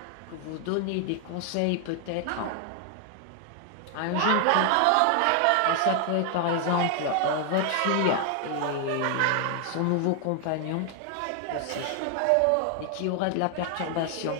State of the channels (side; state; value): both; different; correlation 0.00